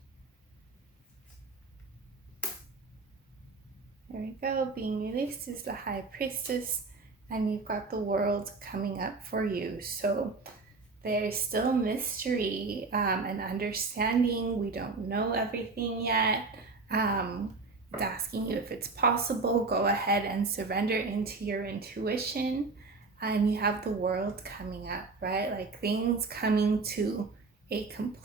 There we go. Being released is the High Priestess, and you've got the World coming up for you. So there's still mystery and understanding. We don't know everything yet. It's asking you if it's possible. Go ahead and surrender into your intuition. And you have the World coming up, right? Like things coming to a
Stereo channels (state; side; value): quieter; left; 3.9 dB